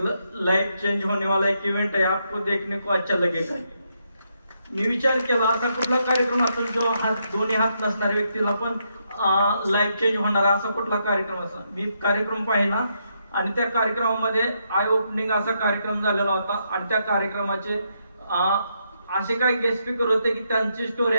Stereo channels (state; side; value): inverted; both; correlation -0.79